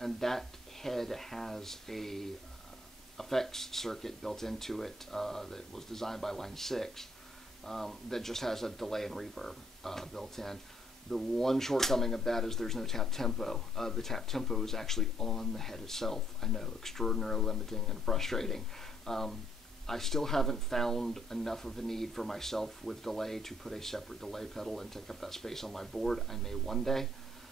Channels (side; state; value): both; normal; correlation 0.67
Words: that head has a effects circuit built into it that was designed by Line 6 that just has a delay and reverb built in. The one shortcoming of that is there's no tap tempo. The tap tempo is actually on the head itself. I know, extraordinarily limiting and frustrating. I still haven't found enough of a need for myself with delay to put a separate delay pedal and take up that space on my board. I may one day,